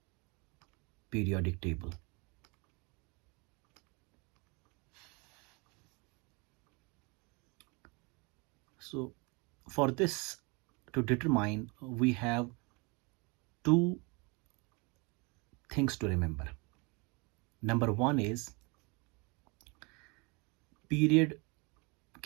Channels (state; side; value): quieter; left; 29.5 dB